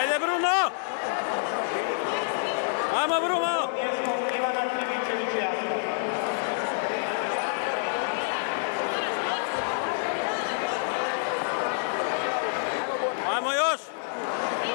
Bruno! Ajmo Bruno! Ajmo još!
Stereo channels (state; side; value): silent; right; 60 dB below the other